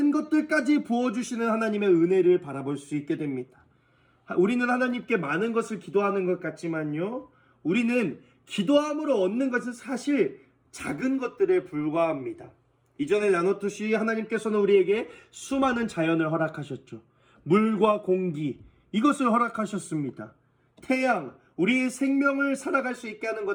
것들까지 부어주시는 하나님의 은혜를 바라볼 수 있게 됩니다. 우리는 하나님께 많은 것을 기도하는 것 같지만요, 우리는 기도함으로 얻는 것은 사실 작은 것들에 불과합니다. 이전에 나눴듯이 하나님께서는 우리에게 수많은 자연을 허락하셨죠. 물과 공기, 이것을 허락하셨습니다. 태양, 우리의 생명을 살아갈 수 있게 하는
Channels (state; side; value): identical; both; correlation 1.00